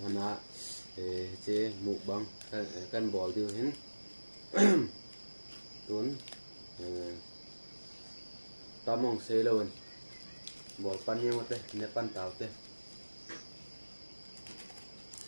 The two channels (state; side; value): inverted; both; correlation -1.00